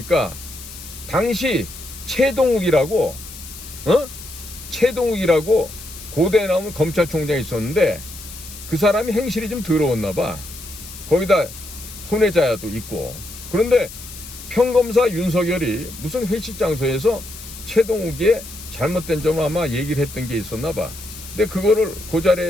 당시 최동욱이라고 고대에 나오는 검찰총장이 있었는데 그 사람이 행실이 좀 더러웠나 봐. 거기다 혼외자도 있고. 그런데 평검사 윤석열이 무슨 회식 장소에서 최동욱의 잘못된 점을 아마 얘기를 했던 게 있었나 봐. 근데 그거를 그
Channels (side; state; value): left; noise; hiss, 14 dB below the sound